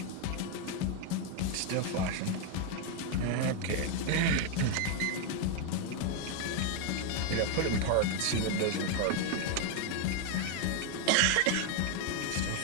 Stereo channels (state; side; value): different; both; correlation 0.01